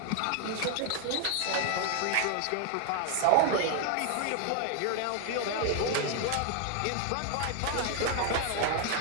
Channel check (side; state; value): both; different; correlation 0.01